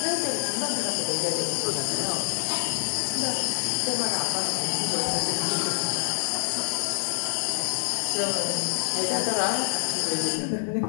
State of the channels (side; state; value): right; silent; digital silence